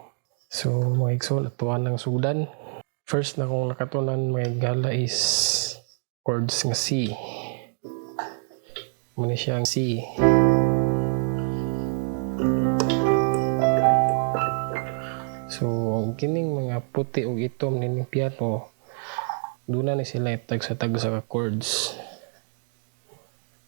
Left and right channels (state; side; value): silent; left; 61 dB below the other